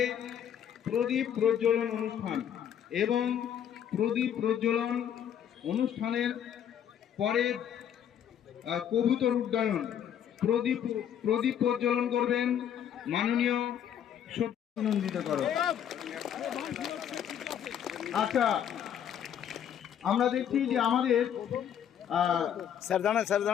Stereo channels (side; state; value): right; quieter; 9.3 dB